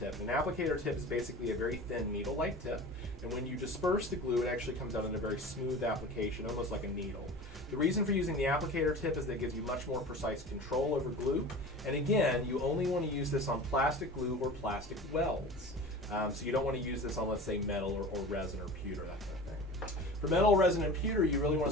An applicator tip is basically a very thin needle-like tip, and when you disperse the glue, it actually comes out in a very smooth application, almost like a needle. The reason for using the applicator tip is that it gives you much more precise control over glue, and again, you only want to use this on plastic glue or plastic welds. So you don't want to use this on, let's say, metal or resin or pewter, that kind of thing. For metal, resin, and pewter, you really want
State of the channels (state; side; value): normal; both; correlation 0.36